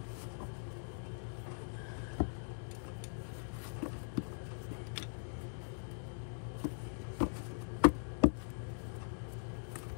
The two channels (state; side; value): silent; right; digital silence